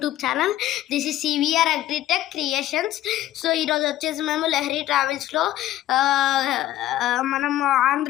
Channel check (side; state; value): right; quieter; 13.9 dB